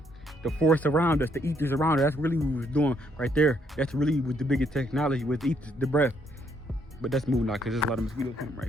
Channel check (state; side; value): normal; both; correlation 0.71